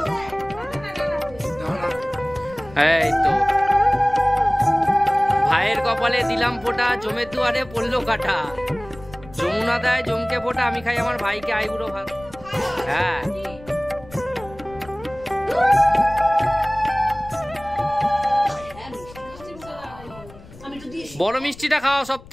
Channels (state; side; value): noise; left; rumble, 20 dB below the sound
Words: এই তো ভাইয়ের কপালে দিলাম ফোঁটা, জমের দুয়ারে পড়লো কাটা। যমুনা দেয় জমকে ফোঁটা, আমি খাই আমার ভাইকে আইবুড়ো ভাত। হ্যাঁ বড় মিষ্টিটা খাওয়া সব